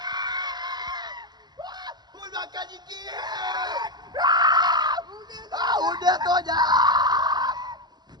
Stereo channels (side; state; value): left; late; 0.20 ms